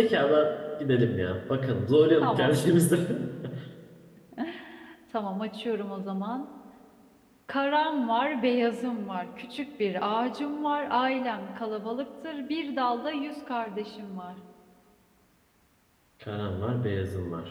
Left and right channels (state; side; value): identical; both; correlation 1.00